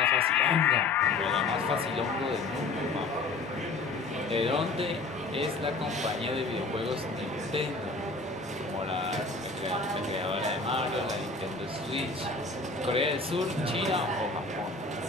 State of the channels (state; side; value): quieter; right; 3.6 dB